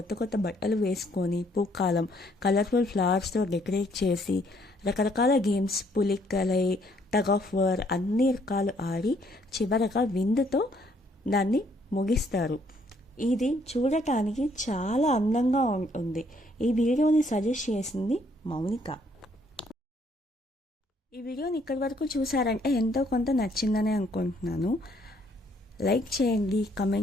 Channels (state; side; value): normal; both; correlation 0.67